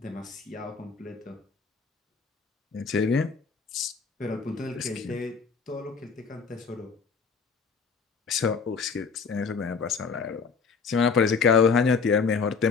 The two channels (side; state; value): right; quieter; 5.3 dB